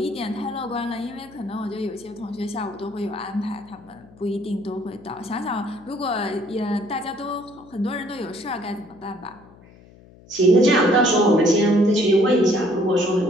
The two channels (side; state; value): left; noise; hum, 24 dB below the sound